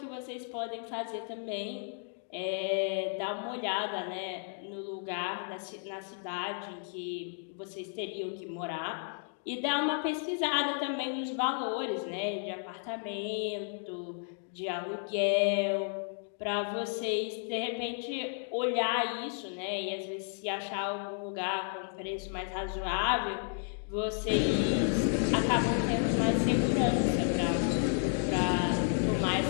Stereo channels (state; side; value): silent; right; 56 dB below the other